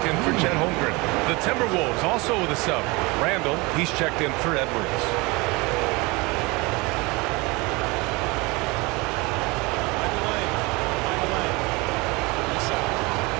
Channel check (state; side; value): quieter; left; 25.2 dB